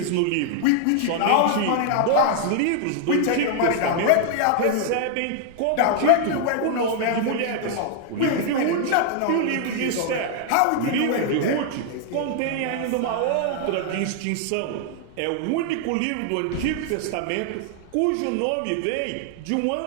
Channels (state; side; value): different; both; correlation 0.00